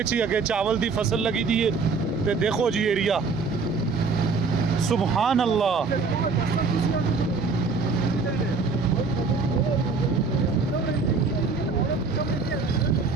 अगे चावल दी फसल लगी दी है। ते देखो जी एरिया, सुभान अल्लाह।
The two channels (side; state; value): left; quieter; 4.6 dB